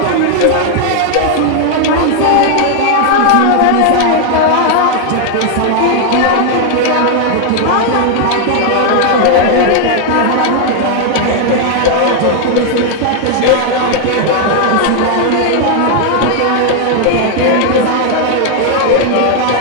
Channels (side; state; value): both; different; correlation 0.00